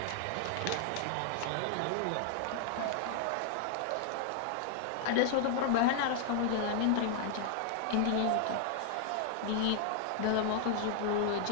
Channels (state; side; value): different; both; correlation 0.00